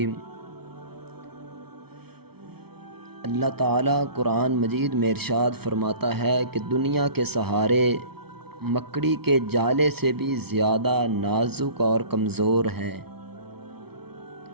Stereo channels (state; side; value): late; left; 0.96 ms